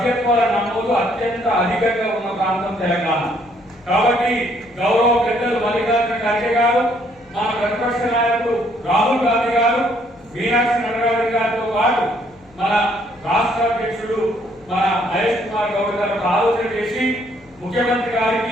నమోదు అత్యంత అధికంగా ఉన్న ప్రాంతం తెలంగాణ. కాబట్టి గౌరవ పెద్దలు మల్లికార్జున ఖర్గే గారు, మన ప్రతిపక్ష నాయకుడు రాహుల్ గాంధీ గారు, మీనాక్షి నటరాజన్ గారితో పాటు మన రాష్ట్ర అధ్యక్షుడు మన మహేష్ కుమార్ గౌడ్ గారు ఆలోచన చేసి ముఖ్యమంత్రి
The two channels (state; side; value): noise; left; hum, 28 dB below the sound